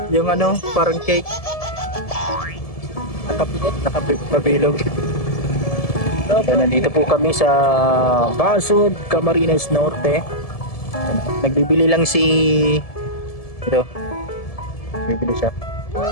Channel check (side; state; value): right; late; 1.7 ms